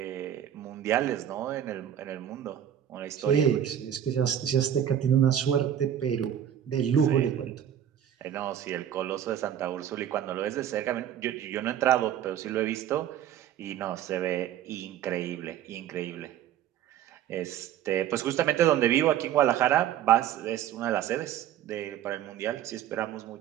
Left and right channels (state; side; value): quieter; left; 10.4 dB